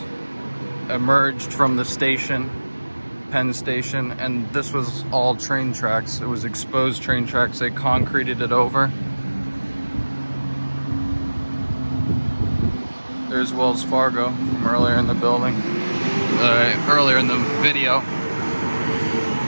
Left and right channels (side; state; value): both; inverted; correlation -1.00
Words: emerged from the station, Penn Station, and this was all train tracks. It was exposed train tracks. They concreted it over. There's Wells Fargo from earlier in the building, earlier in the video.